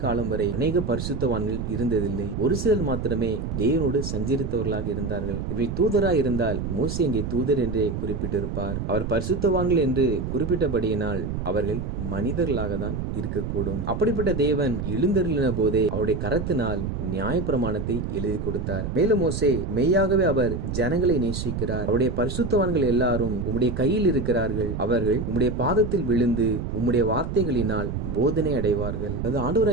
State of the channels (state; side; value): noise; right; rumble, 4 dB below the sound